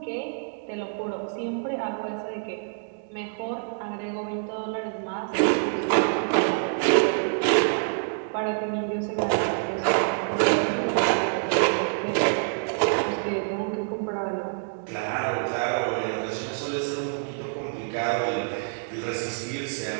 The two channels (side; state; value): left; silent; digital silence